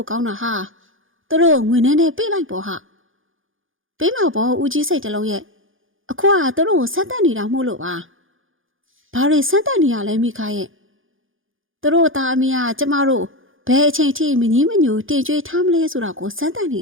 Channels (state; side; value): late; left; 0.58 ms